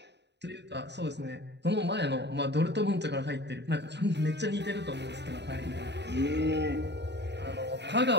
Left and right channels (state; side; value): late; left; 0.50 ms